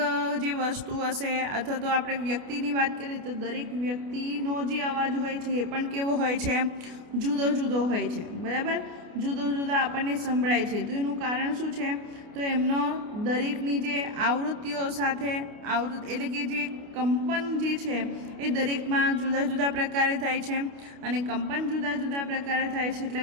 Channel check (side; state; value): left; late; 29 ms